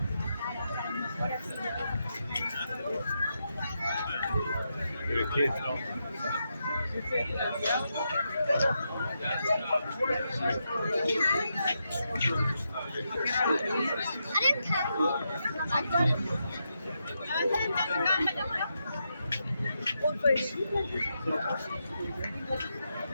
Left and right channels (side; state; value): both; inverted; correlation -0.84